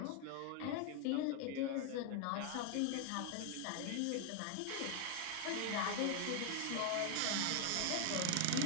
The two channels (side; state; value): both; different; correlation 0.00